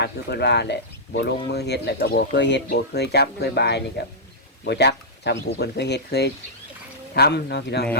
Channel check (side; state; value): both; normal; correlation -0.11